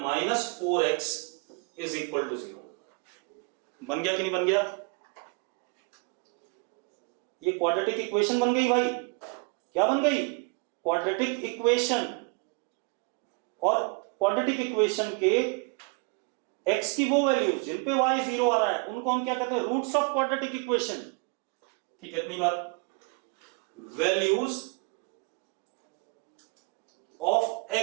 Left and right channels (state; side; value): quieter; left; 32.7 dB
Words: is equal to 0। बन गया कि नहीं बन गया? ये क्वाड्रेटिक इक्वेशन बन गई भाई। क्या बन गई? Quadratic equation. और क्वाड्रेटिक इक्वेशन के x की वो वैल्यूज जिन पे y 0 आ रहा है उनको हम क्या कहते हैं? Roots of quadratic equation. ठीक है, इतनी बात। Values of